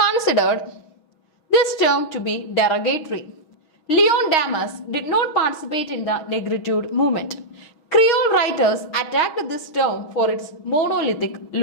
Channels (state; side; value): late; right; 6.4 ms